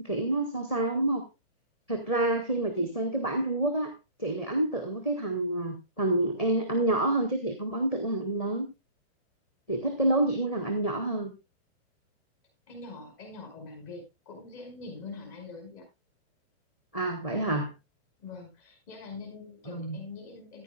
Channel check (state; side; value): late; right; 1.7 ms